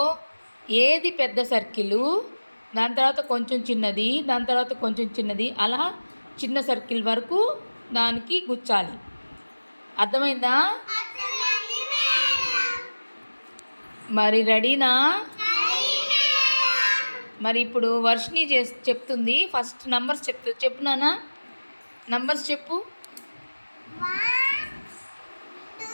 ఏది పెద్ద సర్కిలు, దాని తర్వాత కొంచెం చిన్నది, దాని తర్వాత కొంచెం చిన్నది, అలా చిన్న సర్కిల్ వరకు దానికి గుచ్చాలి. అర్థమైందా? మరి రెడీనా? మరి ఇప్పుడు వర్షిని చెప్తుంది. ఫస్ట్ నంబర్స్ చెప్పు నాన్న. నంబర్స్ చెప్పు. 1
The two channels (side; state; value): both; inverted; correlation -1.00